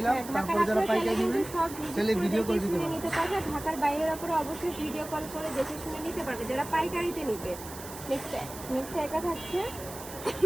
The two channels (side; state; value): right; noise; hiss, 13 dB below the sound